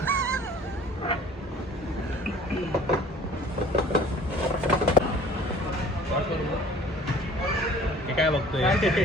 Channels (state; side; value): normal; both; correlation 0.50